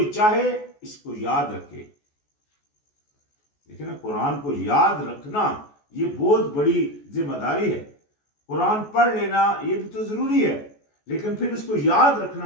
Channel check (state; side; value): late; right; 14 ms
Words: چاہے اس کو یاد رکھے. دیکھیں نا، قرآن کو یاد رکھنا یہ بہت بڑی ذمہ داری ہے. قرآن پڑھ لینا یہ بھی تو ضروری ہے، لیکن پھر اس کو یاد